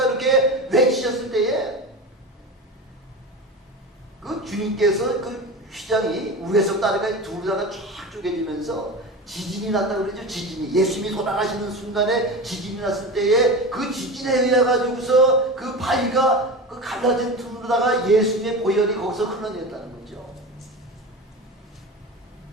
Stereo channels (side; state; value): both; normal; correlation 0.27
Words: 이렇게 외치셨을 때에 그 주님께서 그 휘장이 위에서 따르가 둘다가 쫙 쪼개지면서 지진이 났다고 그러죠. 지진이 예수님이 돌아가시는 순간에 지진이 났을 때에 그 지진에 의해 가지고서 그 바위가 그 갈라진 틈으로다가 예수님의 보혈이 거기서 흘러내렸다는 거죠.